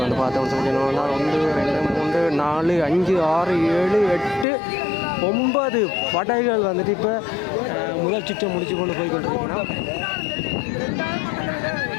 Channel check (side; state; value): right; drops out; at 4.5 s